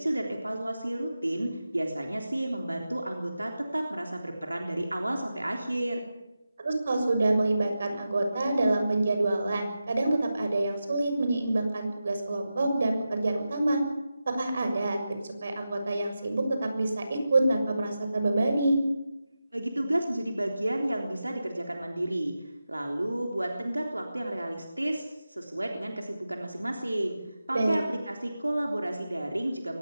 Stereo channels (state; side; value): inverted; both; correlation -0.92